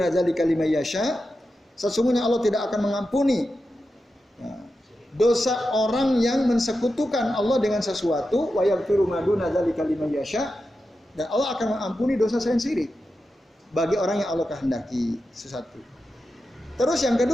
dzalika liman yasha. Sesungguhnya Allah tidak akan mengampuni ya, dosa orang yang mensekutukan Allah dengan sesuatu, wa yaghfiru ma duna dzalika liman yasha, dan Allah akan mengampuni dosa selain syirik bagi orang yang Allah kehendaki. Sesuatu. Terus yang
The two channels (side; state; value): both; normal; correlation 0.90